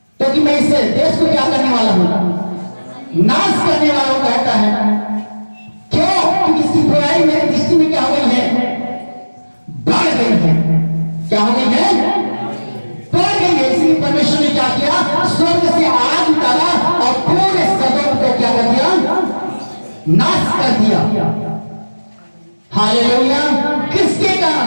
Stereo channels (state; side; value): inverted; both; correlation -1.00